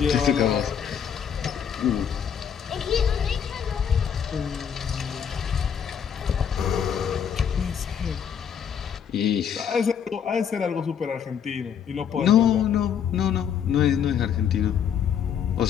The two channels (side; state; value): right; quieter; 8.1 dB